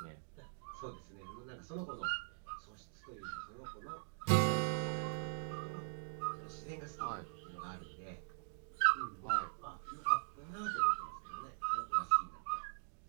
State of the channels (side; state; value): left; silent; digital silence